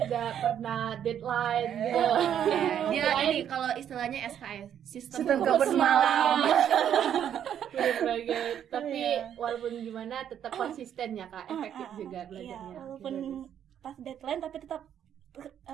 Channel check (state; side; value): quieter; left; 9.5 dB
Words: pernah deadline gitu. Dia ini kalau istilahnya SKS, sistem Sistem kabut semalam. Bener banget. Tapi Iya. walaupun gimana tetap konsisten ya Kak, efektif juga Iya, belajarnya. walaupun pas deadline tapi tetap